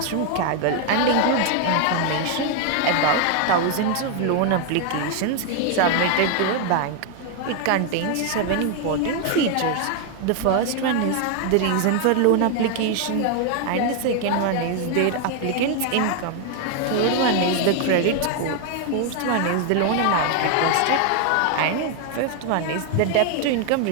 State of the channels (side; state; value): both; different; correlation 0.00